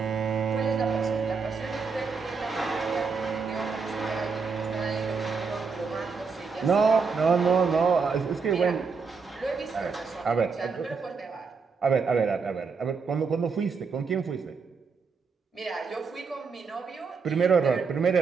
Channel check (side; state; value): left; quieter; 5.1 dB